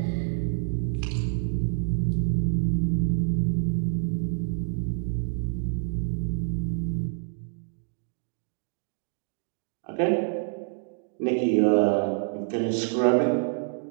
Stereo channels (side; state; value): left; silent; digital silence